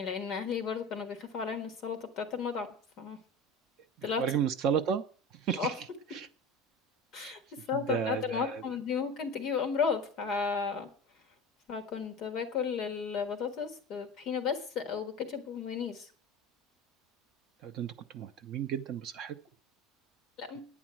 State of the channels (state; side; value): normal; both; correlation 0.31